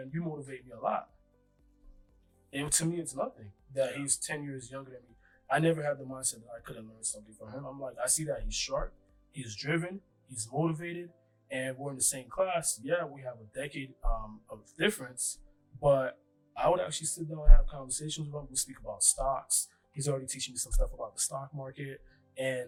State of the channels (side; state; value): both; identical; correlation 1.00